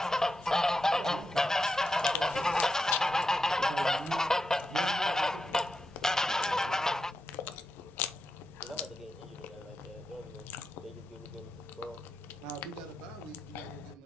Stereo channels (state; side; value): normal; both; correlation 0.88